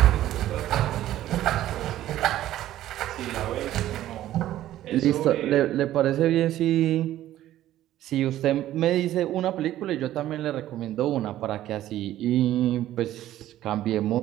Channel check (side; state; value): left; quieter; 13.4 dB